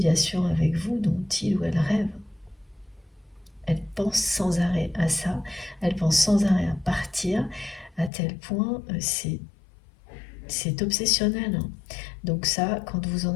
avec vous dont il ou elle rêve. Elle pense sans arrêt à ça, elle pense sans arrêt à partir, à tel point c'est obsessionnel, hein. Donc ça, quand vous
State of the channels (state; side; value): drops out; right; at 8.1 s